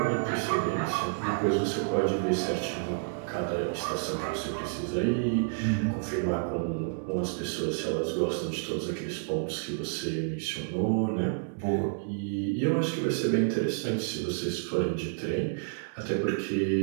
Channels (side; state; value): left; silent; 58 dB below the other